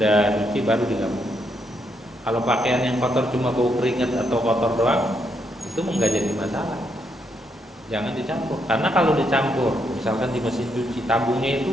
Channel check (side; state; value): both; normal; correlation 0.77